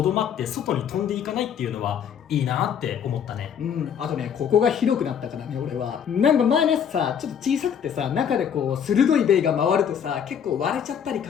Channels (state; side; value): quieter; right; 8.1 dB